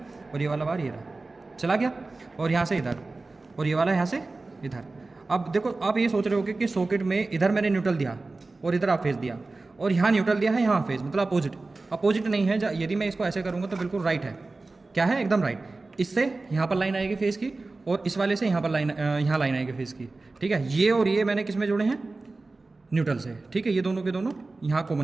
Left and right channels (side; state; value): left; quieter; 3.4 dB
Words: और ये वाला वायर ये रहा चला गया, और यहाँ से इधर, और ये वाला यहाँ से इधर। अब देखो आप ये सोच रहे हो कि सॉकेट में इधर मैंने न्यूट्रल दिया और इधर आप फेज दिया, और यहाँ न्यूट्रल दिया है, यहाँ फेज, मतलब अपोजिट नहीं है। यदि मैं इसको ऐसे करूँगा तो बिल्कुल राइट है, क्या है, एकदम राइट। इससे यहाँ पर लाइन आएगी फेज़ की और इस वाले से यहाँ पर यहाँ लाइन आएगी फेज़ की, ठीक है। ये और ये मैंने किस में जोड़े हैं, न्यूट्रल से, ठीक है। ये दोनों के दोनों यहाँ